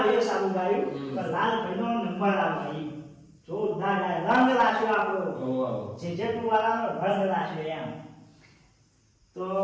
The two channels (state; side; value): identical; both; correlation 1.00